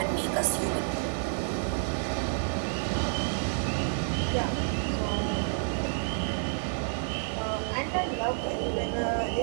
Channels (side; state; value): left; silent; 58 dB below the other